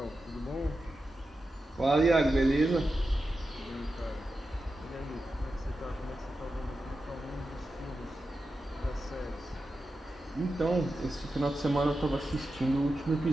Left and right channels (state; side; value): normal; both; correlation 0.91